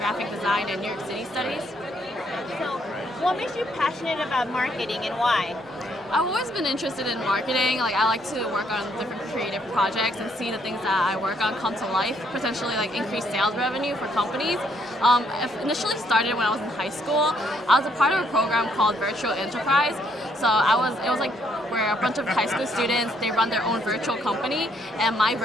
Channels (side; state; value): both; normal; correlation 0.70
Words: design and New York City studies. So, what makes you passionate about marketing and why? I've always been interested in marketing. Like I like to work on different creative projects and see the things that I work on come to life, potentially like increase sales revenue for companies. It initially started when I was in high school. I was a part of a program called Virtual Enterprise. So it was like where a bunch of high school students, they run their own virtual company, and my